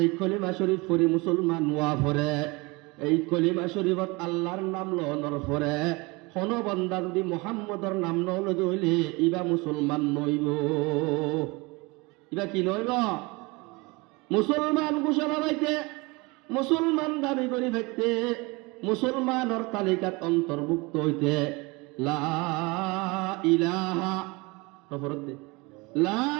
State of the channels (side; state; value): left; quieter; 25.6 dB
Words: কলিমা শরীফ পড়ি মুসলমান ওয়া পড়ে এই কলিমা শরীফত আল্লাহর নাম লওয়ার পরে কোন বান্দা যদি মুহাম্মদর নাম নলদ হইলে ইবা মুসলমান নইব ইবা কি নইব মুসলমান ঘোষণা পাইতে মুসলমান দাবি করি থাকতে মুসলমানের তালিকাত অন্তর্ভুক্ত হইতে লা ইলাহা লা